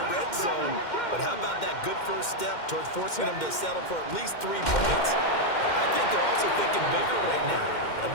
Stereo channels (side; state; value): right; late; 2.1 ms